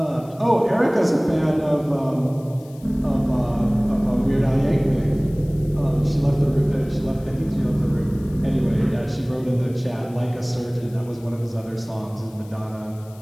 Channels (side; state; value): left; noise; hiss, 26 dB below the sound